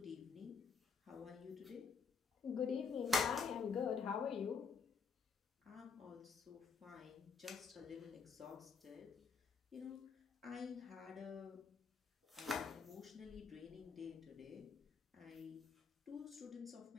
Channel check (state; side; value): quieter; right; 5.4 dB